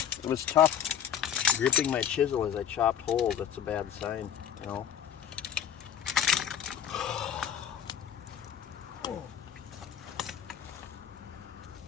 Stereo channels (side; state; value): right; quieter; 9.2 dB